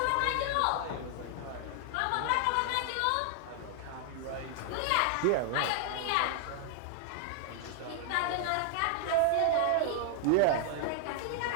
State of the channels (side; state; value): both; different; correlation 0.00